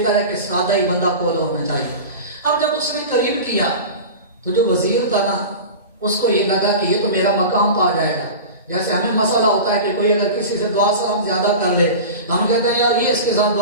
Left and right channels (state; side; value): inverted; both; correlation -0.31